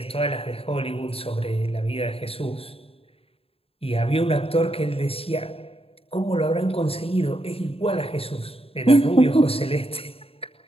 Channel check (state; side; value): late; right; 0.28 ms